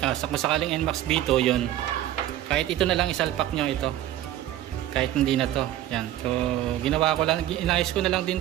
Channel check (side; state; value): left; quieter; 13.3 dB